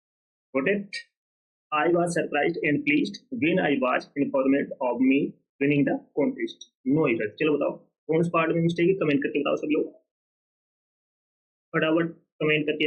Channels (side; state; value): both; identical; correlation 1.00